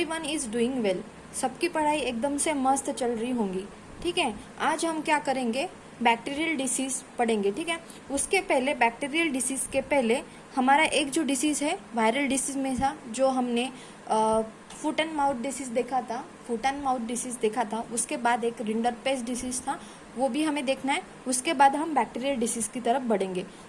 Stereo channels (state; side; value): identical; both; correlation 1.00